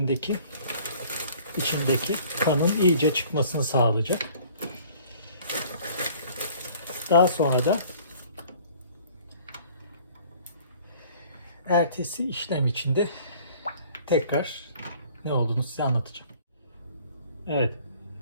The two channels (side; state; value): both; inverted; correlation -0.53